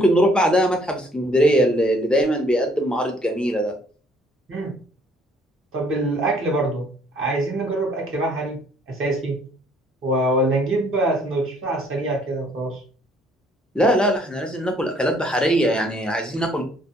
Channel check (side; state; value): both; normal; correlation 0.62